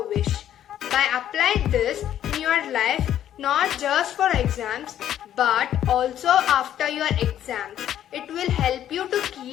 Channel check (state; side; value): quieter; right; 11.0 dB